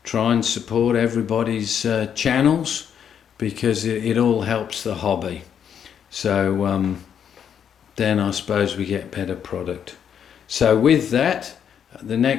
try and support everybody's channels, because it all helps the hobby. So then I suppose we get better product. So with that, the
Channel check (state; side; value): quieter; right; 8.4 dB